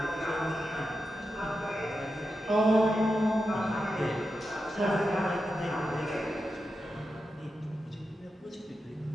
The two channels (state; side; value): normal; both; correlation 0.89